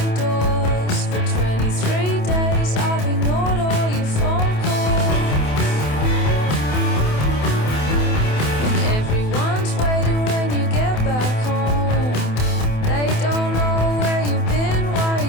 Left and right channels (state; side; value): late; right; 27 ms